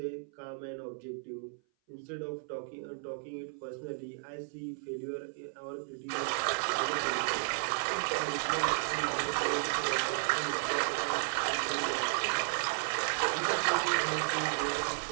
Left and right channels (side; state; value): left; silent; 55 dB below the other